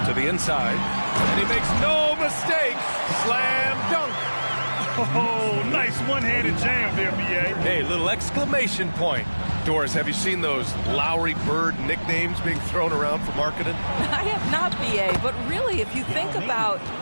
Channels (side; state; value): both; inverted; correlation -1.00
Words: To the inside. And he makes no mistake. Slam dunk. Oh, nice one-handed jam there, B.A. Hey, little exclamation point. Doris, have you seen those Lowry Bird nicknames being thrown around for marketing? I have not, B.A., but really, if you think about